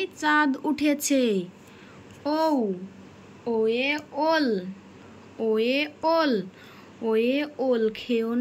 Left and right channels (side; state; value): both; identical; correlation 1.00